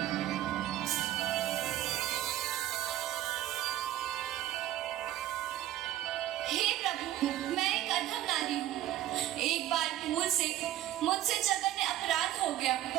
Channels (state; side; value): quieter; left; 13.4 dB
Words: एक बार भूल से मुझसे जघन्य अपराध हो गया